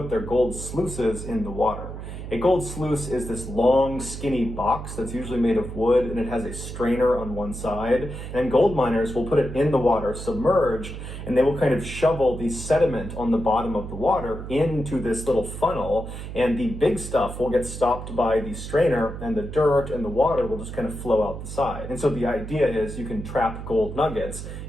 their gold sluices in the water. A gold sluice is this long, skinny box that's usually made of wood, and it has a strainer on one side. And gold miners will put it in the water, submerged, and they will kind of shovel the sediment on the bottom of the water into this little funnel, and the big stuff will get stopped by the strainer, and the dirt and the water will just kind of flow out the side. And so the idea is you can trap gold nuggets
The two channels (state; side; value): noise; right; hum, 9 dB below the sound